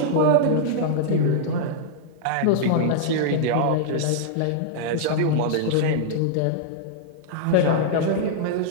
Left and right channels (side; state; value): both; different; correlation -0.02